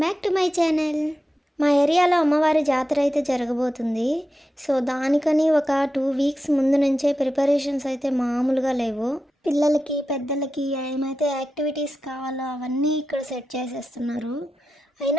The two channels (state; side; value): normal; both; correlation 0.91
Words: back to my channel. మా ఏరియాలో అమ్మవారి జాతర అయితే జరగబోతుంది. సో దానికని ఒక 2 వీక్స్ ముందు నుంచే ప్రిపరేషన్స్ అయితే మామూలుగా లేవు. పిల్లలకి పెద్దలకి ఏమైతే యాక్టివిటీస్ కావాలో అవన్నీ ఇక్కడ సెట్ చేసేస్తున్నారు.